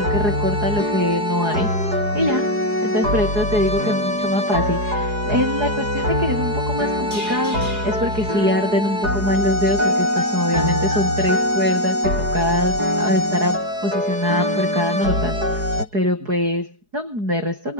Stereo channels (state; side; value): late; left; 4.8 ms